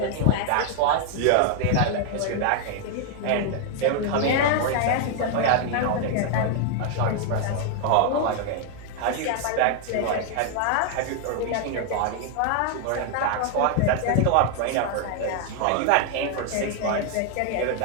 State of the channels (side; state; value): both; different; correlation 0.00